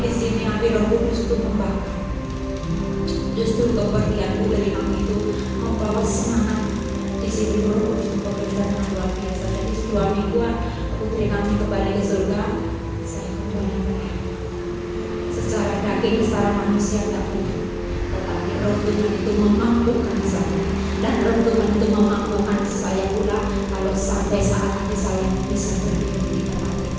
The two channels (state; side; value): identical; both; correlation 1.00